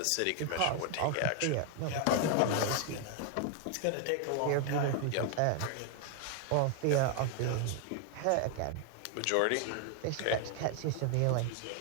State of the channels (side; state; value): both; different; correlation 0.00